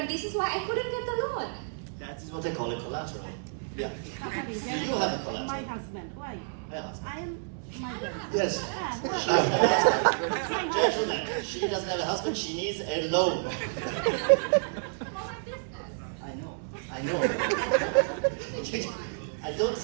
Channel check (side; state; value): left; silent; digital silence